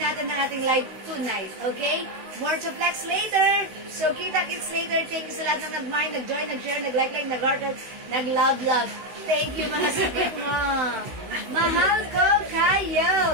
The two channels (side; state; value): left; late; 16 ms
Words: ang ating live tonight, okay? More to flex later. So, kita-kits later. Thank you sa lahat na nag-mind, nag-join, nag-share, nag-like, nag-heart, nag-love. Thank you, mga suki mo. Mahal ko